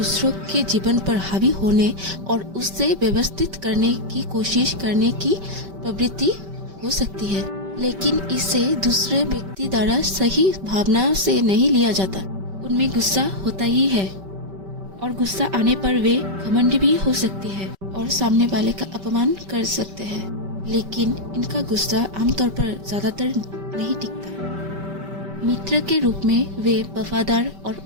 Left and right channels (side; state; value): left; late; 5.2 ms